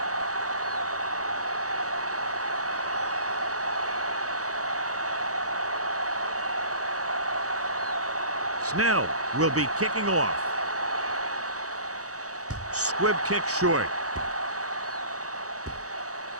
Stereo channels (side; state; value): left; late; 0.66 ms